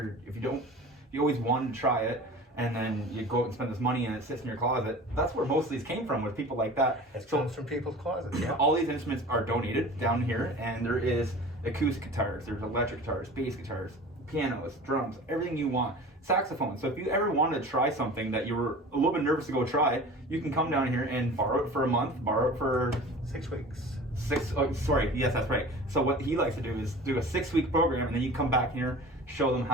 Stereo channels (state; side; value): normal; both; correlation 0.39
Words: you always wanted to try it, and then you go out and spend this money and it sits in your closet. That's where most of these came from, with people like that. It comes from people's closets. Yeah. All these instruments are donated down here, and there is acoustic guitars, there's electric guitars, bass guitars, pianos, drums, everything you want. Saxophone. So if you ever wanted to try something that you were a little bit nervous to go try, you can come down here and borrow it for a month, borrow it for 6 weeks. Yes, that's right. So what he likes to do is do a 6-week program, and then you come back here, show them